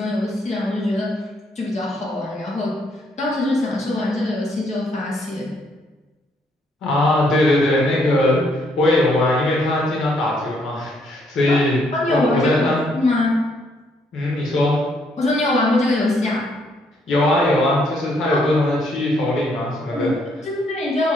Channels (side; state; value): both; normal; correlation 0.71